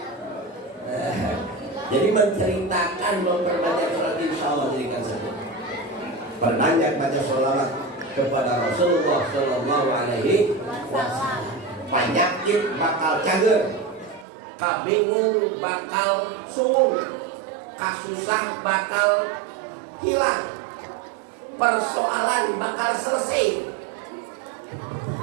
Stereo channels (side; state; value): left; drops out; at 14.2 s